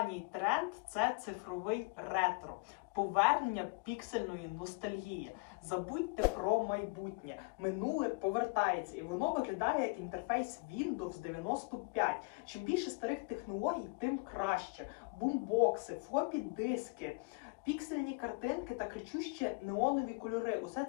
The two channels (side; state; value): right; quieter; 32.3 dB